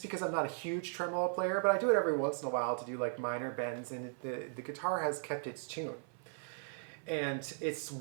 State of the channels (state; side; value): silent; left; 53 dB below the other